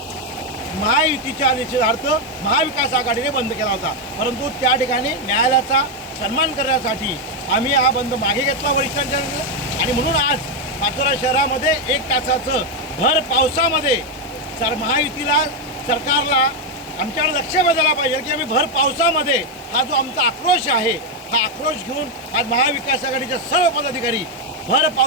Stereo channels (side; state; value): right; noise; hiss, 27 dB below the sound